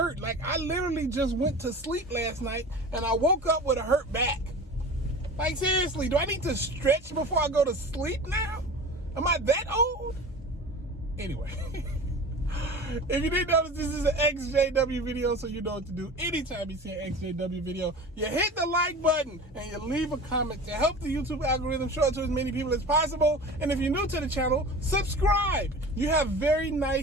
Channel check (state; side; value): normal; both; correlation 0.36